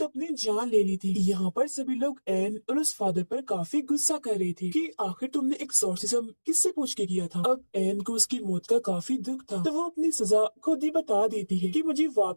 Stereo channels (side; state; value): both; inverted; correlation -1.00